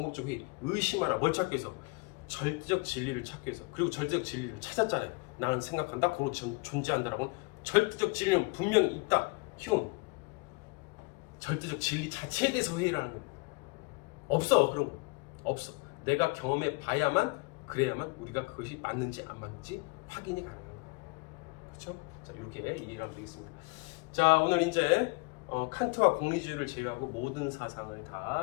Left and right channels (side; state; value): right; quieter; 28.5 dB